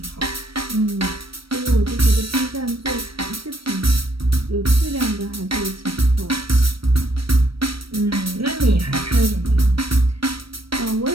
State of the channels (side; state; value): left; late; 0.75 ms